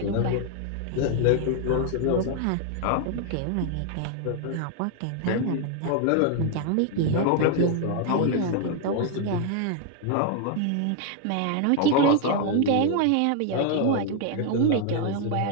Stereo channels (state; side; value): different; both; correlation 0.00